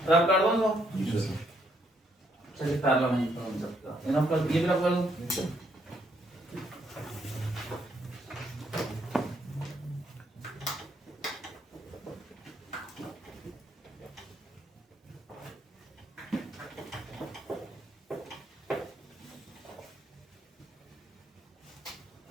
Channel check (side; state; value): both; normal; correlation 0.72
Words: रब कर दो तो चलिए पैरेलल नहीं कर सकता, इनफ कर, ये भी रब कर दो।